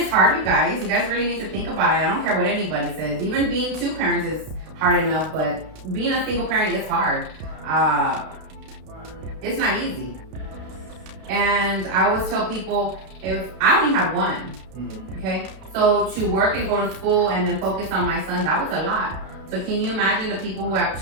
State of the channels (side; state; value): left; late; 32 ms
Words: hard, you guys. You guys really need to think about it. I don't care what anybody says. Even being two parents is hard enough, but being a single parent is hard. It's not easy. And I always tell people, if I only had one, mm-hmm. okay? So to work and go to school and then focus on my son, that was a lot. So can you imagine the people who have